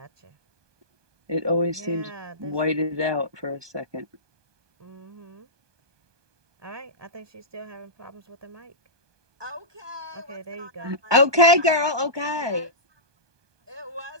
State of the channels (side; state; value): left; late; 1.2 ms